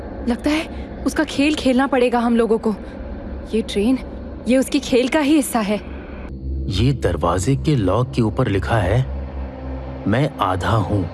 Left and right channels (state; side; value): identical; both; correlation 1.00